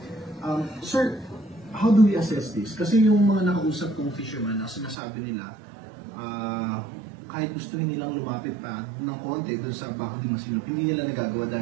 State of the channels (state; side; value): drops out; left; at 5.0 s